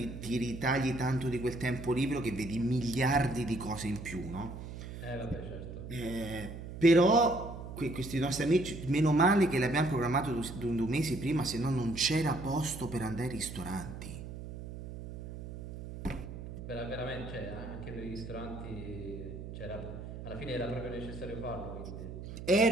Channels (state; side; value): noise; right; hum, 10 dB below the sound